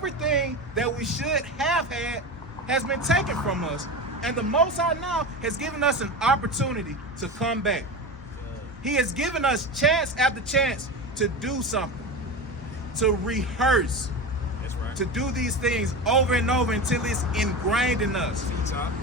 that we should have had has been taken from us. And the Most High now has given us an opportunity to come back. He has given us chance after chance to do something, to rehearse, That's right. to do these things over and over until it's ingrained in us.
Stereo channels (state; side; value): normal; both; correlation 0.25